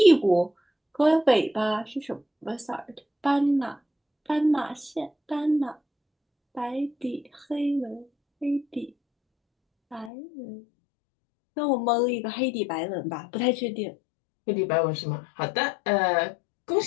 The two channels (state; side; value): drops out; right; at 10.1 s